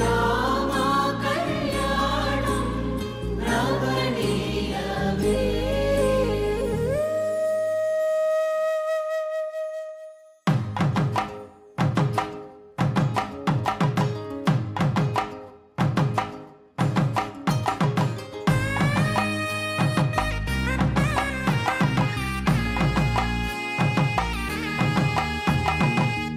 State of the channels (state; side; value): identical; both; correlation 1.00